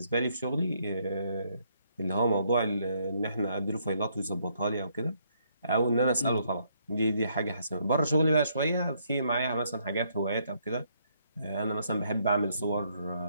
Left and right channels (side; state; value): both; inverted; correlation -0.71